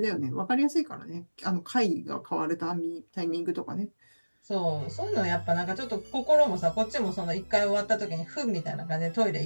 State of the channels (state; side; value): inverted; both; correlation -1.00